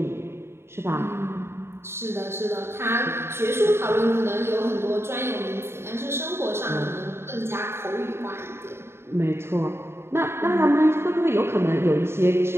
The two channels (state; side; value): late; left; 0.12 ms